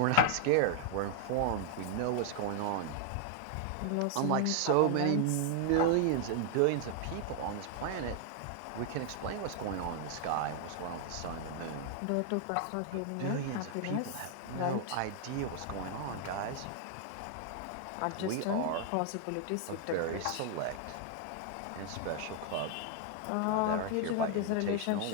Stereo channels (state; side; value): different; both; correlation 0.00